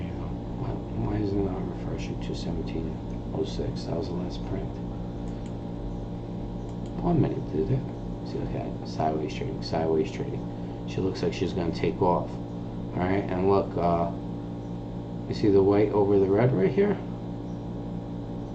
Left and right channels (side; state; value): both; identical; correlation 1.00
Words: go. Why is it not refreshing to 1706? That was the last print. 1 minute, did it? See, look at it. Sideways trading, sideways trading. She looks like she's going to take off. Alright, and look, you see the white over the red right here?